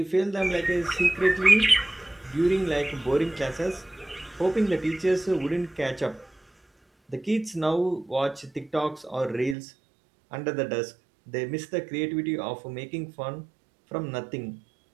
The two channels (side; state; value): left; drops out; at 9.6 s